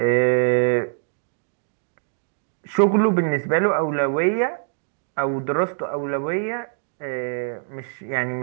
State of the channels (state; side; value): silent; left; digital silence